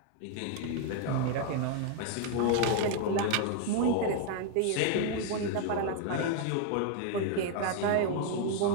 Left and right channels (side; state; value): both; different; correlation 0.00